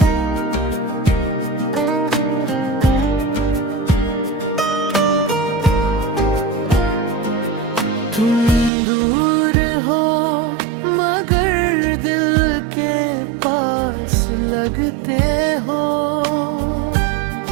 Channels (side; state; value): left; drops out; at 8.7 s